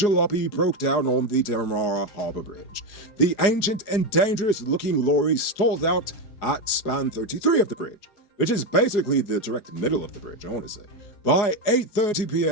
broke down on the Demerara Harbour Bridge. The ancient and dangerous-looking lorry stalled out at span 33 of the bridge, which is basically the direct middle of the bridge, I want to say. By 8:30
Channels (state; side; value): late; right; 4.8 ms